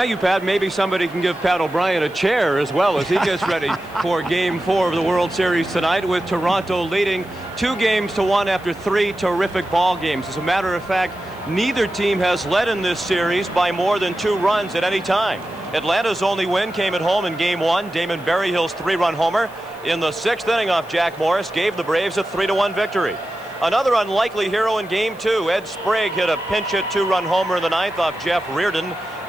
you, Pat. Maybe somebody can give Pat O'Brien a chair as well as he gets ready for Game 4 of the World Series tonight, with Toronto leading 2-1 after 3 terrific ball games. As a matter of fact, neither team has led in this series by more than 2 runs at any time. Atlanta's only win came at home in Game 1. Damon Berryhill's 3-run homer in the 6th inning off Jack Morris gave the Braves a 3-1 victory. Another unlikely hero in Game 2, Ed Sprague hit a pinch hit 2-run homer in the 9th off Jeff Reardon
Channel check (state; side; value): noise; left; hiss, 26 dB below the sound